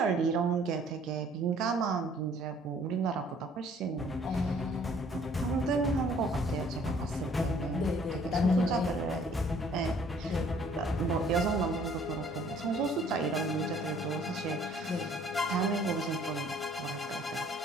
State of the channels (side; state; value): both; normal; correlation 0.58